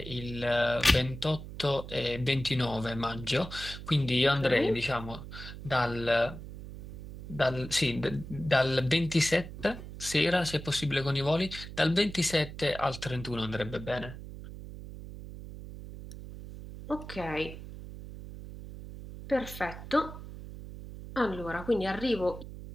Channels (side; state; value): right; noise; hum, 12 dB below the sound